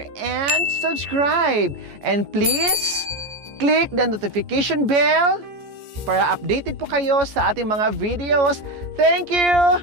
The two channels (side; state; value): left; late; 14 ms